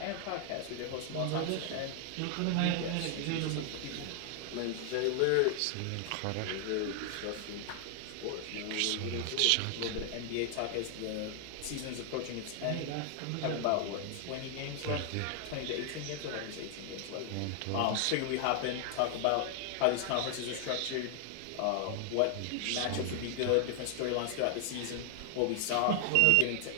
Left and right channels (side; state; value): both; different; correlation 0.00